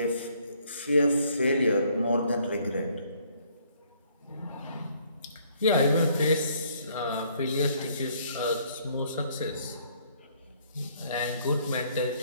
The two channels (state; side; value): inverted; both; correlation -0.64